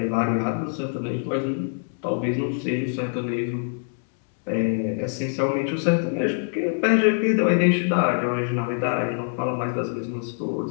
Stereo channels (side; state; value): right; silent; 62 dB below the other